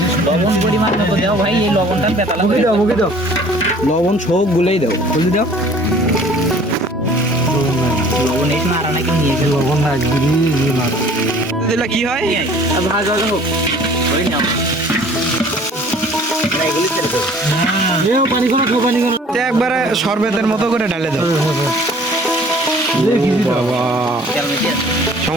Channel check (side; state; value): both; normal; correlation 0.51